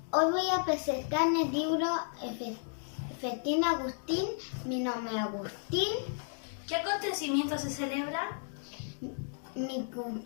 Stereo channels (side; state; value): right; silent; digital silence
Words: Hoy voy a presentar el libro Festín Agustín, mi nombre es Agustín. ¿Qué acontecimiento se celebra? Mi